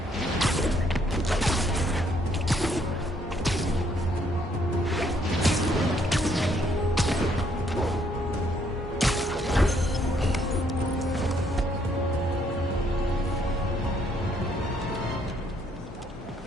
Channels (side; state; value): both; normal; correlation 0.69